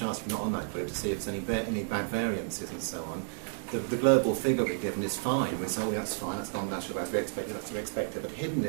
if you're not on that group to see if there's any bad variances and so on. The global figure we've given is fine. We say, oh, that's fine, that's non-natural, that's to be expected, that's to be expected. But hidden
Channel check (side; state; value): left; silent; digital silence